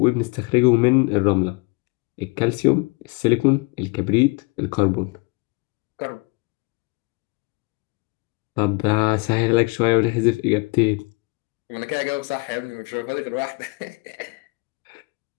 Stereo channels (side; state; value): right; quieter; 28.9 dB